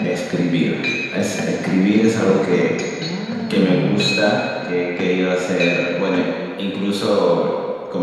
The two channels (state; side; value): identical; both; correlation 1.00